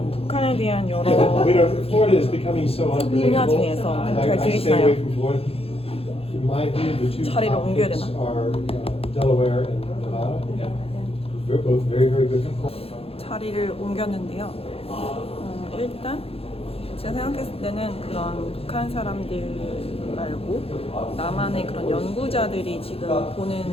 북한에 대한 여러 분야 중에서 잘 들리시나요? 자리를 옮겨야 되나? 자리를 옮겼는데요. 일단 제가 생각했을 때는 그런 북한 사람들 말고 남한의 그런 연구자들이 지금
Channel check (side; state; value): right; late; 0.28 ms